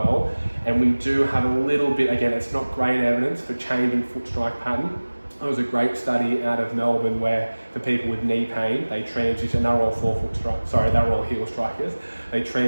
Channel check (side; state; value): both; inverted; correlation -1.00